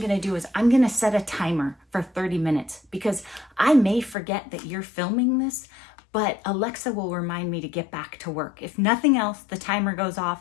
to do is I'm going to set a timer for 30 minutes because I may forget that you're filming this, but Alexa will remind me to get back to work. If nothing else, the timer goes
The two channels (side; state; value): right; drops out; at 4.2 s